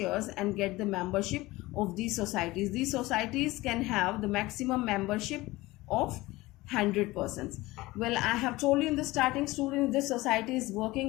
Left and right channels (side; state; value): right; quieter; 19.7 dB